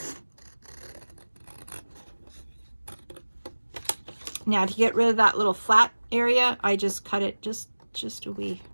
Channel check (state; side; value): inverted; both; correlation -1.00